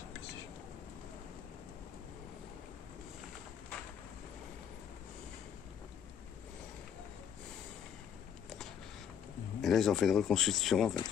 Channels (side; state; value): right; quieter; 8.5 dB